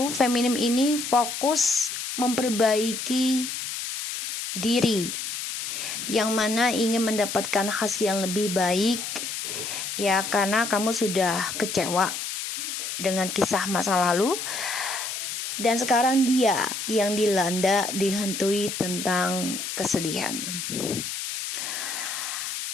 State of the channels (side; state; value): left; noise; hiss, 5 dB below the sound